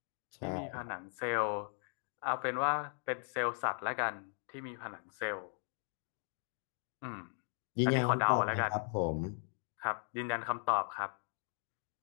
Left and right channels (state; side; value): silent; right; 52 dB below the other